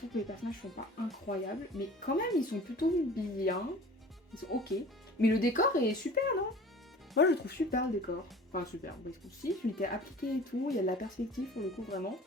que les personnages sont pas incroyables, mais quand même, ils sont plutôt bien. Ils sont ok. Mais le décor est super, non? Moi, je le trouve super le décor. Enfin, super. Si, il était appliqué et tout. Il y a de la perspective pour le coup, vraiment.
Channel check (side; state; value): both; normal; correlation 0.44